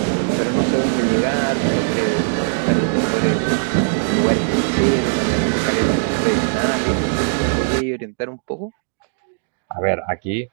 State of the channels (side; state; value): left; silent; digital silence